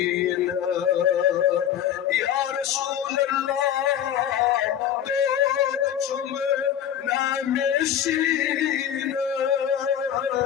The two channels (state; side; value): quieter; right; 9.9 dB